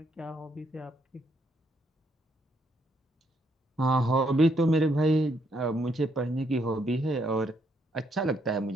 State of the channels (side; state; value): both; normal; correlation 0.74